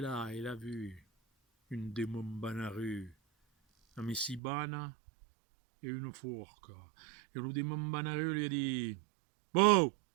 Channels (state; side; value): drops out; left; at 4.4 s